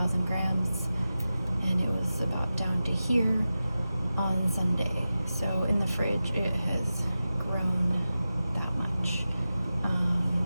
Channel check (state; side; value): inverted; both; correlation -0.94